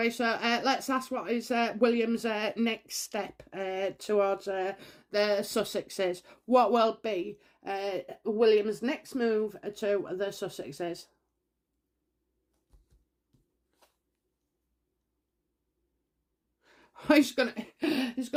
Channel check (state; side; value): identical; both; correlation 1.00